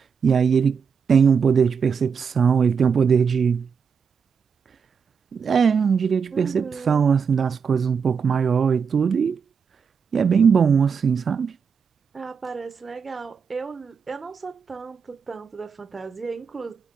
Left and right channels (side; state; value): left; quieter; 6.1 dB